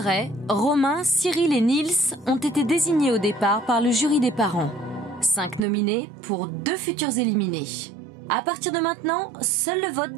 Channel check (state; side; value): drops out; left; at 5.7 s